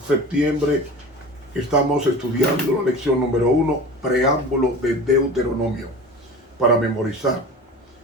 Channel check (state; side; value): normal; both; correlation 0.36